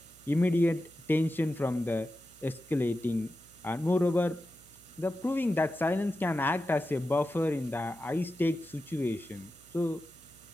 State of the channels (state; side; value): noise; right; hum, 26 dB below the sound